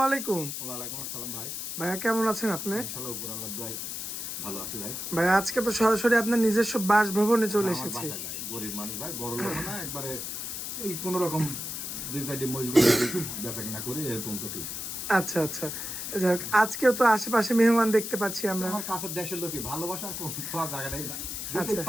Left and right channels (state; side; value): noise; left; hiss, 5 dB below the sound